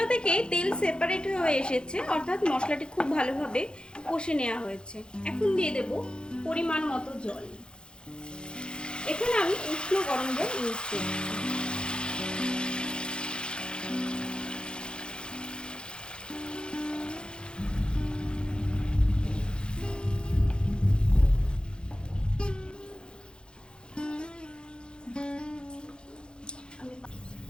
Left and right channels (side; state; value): right; late; 0.050 ms